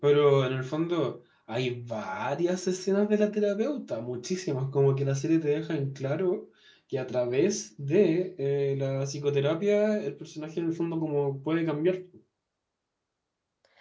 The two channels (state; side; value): identical; both; correlation 1.00